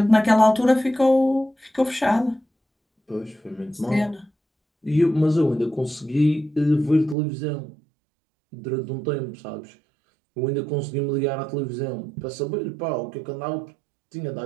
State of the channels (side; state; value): left; drops out; at 7.2 s